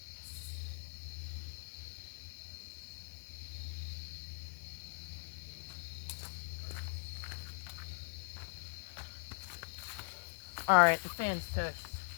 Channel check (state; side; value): silent; right; digital silence